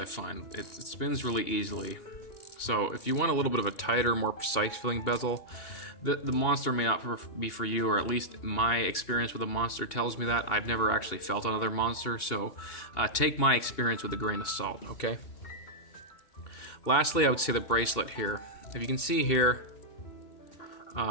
find. It spins really easily. So if you want a little bit of a tighter, more precise feeling bezel, the Monster may not be for you, or at least my experience with a Monster tells me that. I've never actually felt another Monster, so take my experience with a grain of salt, okay? Lastly, I would say the bracelet here. If you can see here,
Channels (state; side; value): late; right; 2.7 ms